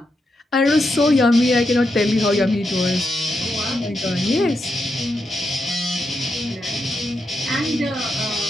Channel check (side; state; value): both; normal; correlation 0.84